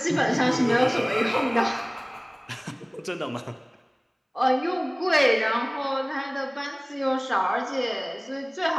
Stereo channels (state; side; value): identical; both; correlation 1.00